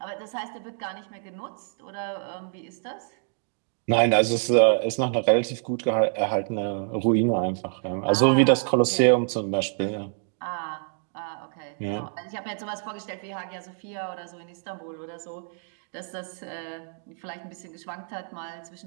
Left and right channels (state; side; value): silent; left; digital silence